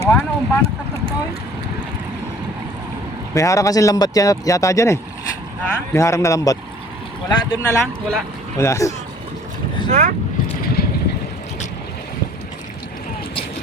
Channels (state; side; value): normal; both; correlation 0.52